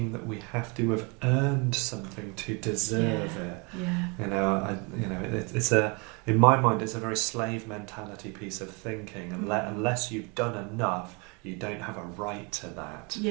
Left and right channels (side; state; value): left; quieter; 31.3 dB